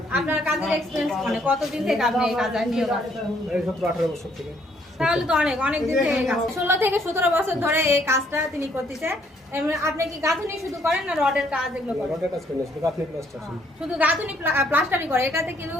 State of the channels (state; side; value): normal; both; correlation 0.67